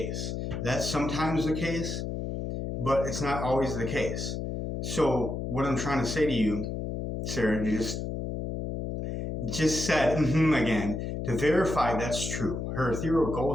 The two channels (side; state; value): left; noise; hum, 4 dB below the sound